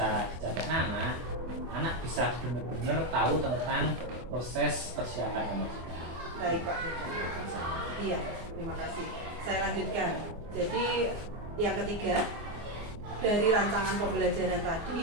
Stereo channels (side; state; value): left; late; 24 ms